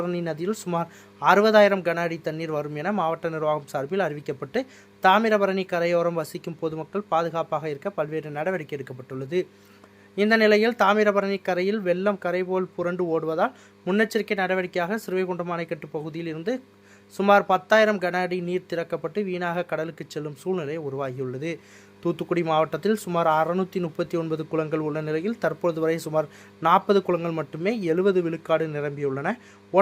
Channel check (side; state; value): both; identical; correlation 1.00